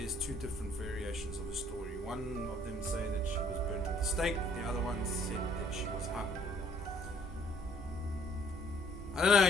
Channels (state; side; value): normal; both; correlation 0.61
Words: 2 different variations of the story. One of them say that she was burnt at the stake, the other one said that she was hung. I don't know,